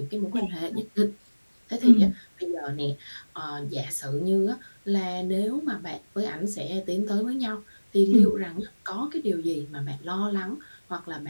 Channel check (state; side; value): inverted; both; correlation -1.00